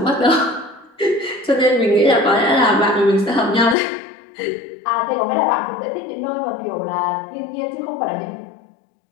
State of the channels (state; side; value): drops out; right; at 3.8 s